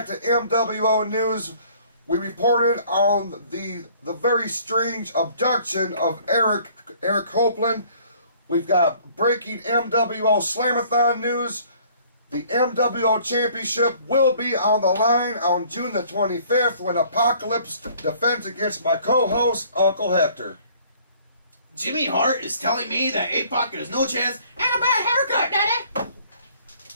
to MWO news, we reported on the very strange abduction of Eric Copeland. We've got breaking MWO Slam-a-Thon news. The MWO Championship will be on the line on June the 25th when Apocalypse defends against my co-host, Uncle Hector. Jimmy Hart is telling me that APOC has no chance and a bad haircut,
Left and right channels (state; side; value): inverted; both; correlation -0.57